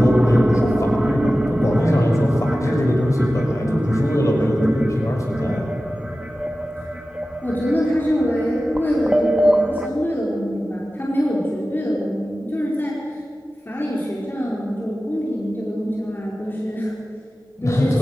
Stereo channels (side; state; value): both; normal; correlation 0.95